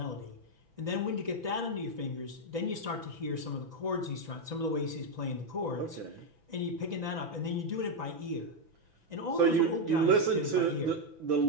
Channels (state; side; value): late; left; 5.9 ms